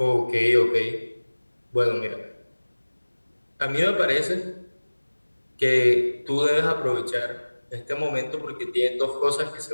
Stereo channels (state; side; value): inverted; both; correlation -1.00